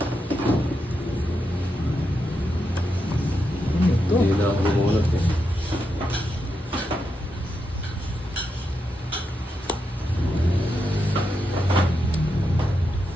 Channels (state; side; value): normal; both; correlation 0.85